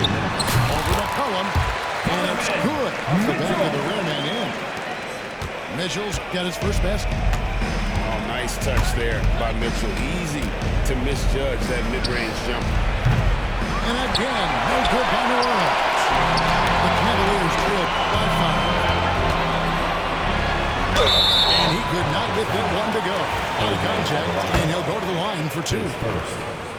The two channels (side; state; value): both; identical; correlation 1.00